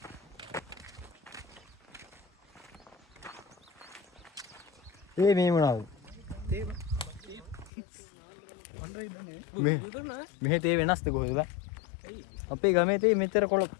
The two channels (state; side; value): drops out; right; at 7.7 s